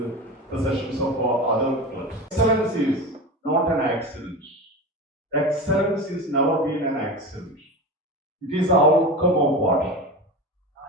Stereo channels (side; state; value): both; normal; correlation 0.27